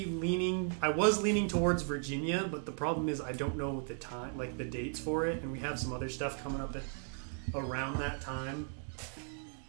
leaning towards Virginia, but the problem is I don't know the time, like the dates for it, and we have some other stuff coming up around that time.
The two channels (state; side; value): silent; left; 54 dB below the other